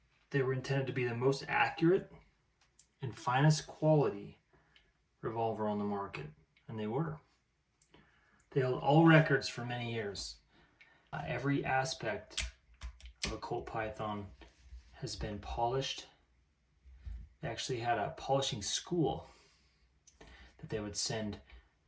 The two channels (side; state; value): both; identical; correlation 1.00